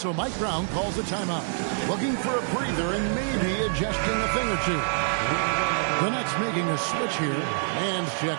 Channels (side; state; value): left; silent; digital silence